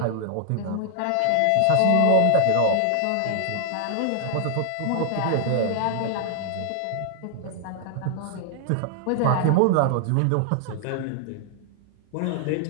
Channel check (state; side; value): different; both; correlation 0.00